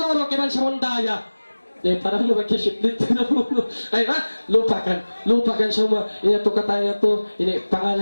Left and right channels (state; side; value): inverted; both; correlation -1.00